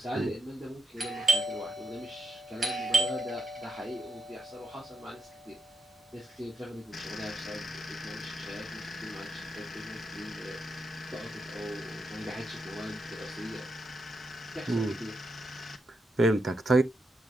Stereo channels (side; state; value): both; normal; correlation 0.82